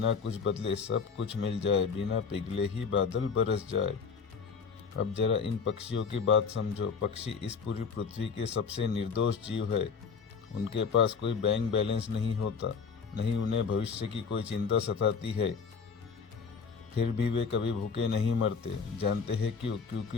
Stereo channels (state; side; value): quieter; right; 5.7 dB